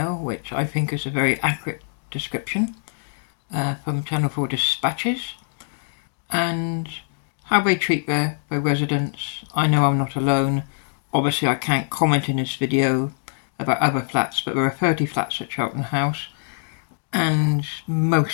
which I think is a very accurate description from Channel 4 Dispatches, and how they treat their residents. I know I'm not alone. Obviously I can't comment in this video about other flats, but there are 30 flats at Cheltenham House, and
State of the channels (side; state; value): right; silent; digital silence